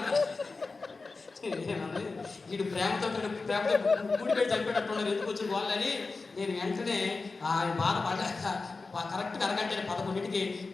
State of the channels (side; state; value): right; quieter; 3.9 dB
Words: వీడు ప్రేమతో కూడి పెట్టి చనిపోయేటట్టున్నారు. ఎందుకు వచ్చిన వాళ్ళని నేను వెంటనే ఆయన బాధపడ్డాక కరెక్ట్గా అరగంట 11ంటికి